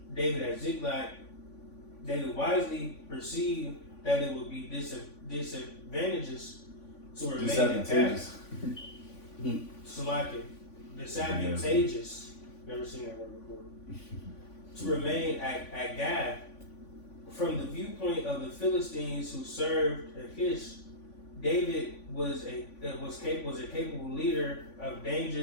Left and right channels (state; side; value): late; right; 3.5 ms